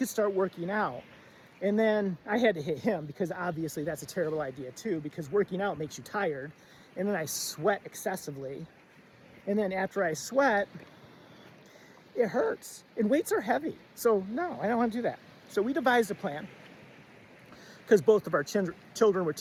start working out." And then I had to hit him, because obviously that's a terrible idea too, because working out makes you tired. And then I sweat excessively. And then after I sweat, it hurts, and weights are heavy. So no, I don't want to do that. So we devised a plan, because both of our children were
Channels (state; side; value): identical; both; correlation 1.00